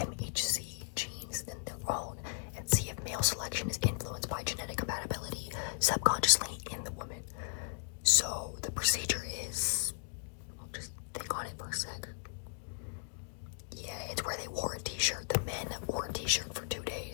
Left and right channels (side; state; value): right; silent; digital silence